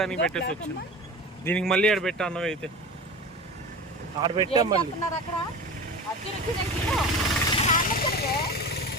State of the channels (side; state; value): both; normal; correlation 0.32